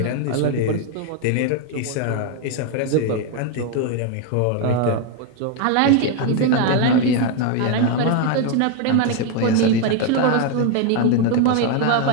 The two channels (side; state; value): both; different; correlation 0.01